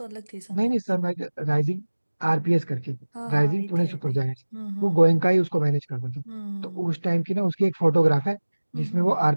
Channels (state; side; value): inverted; both; correlation -1.00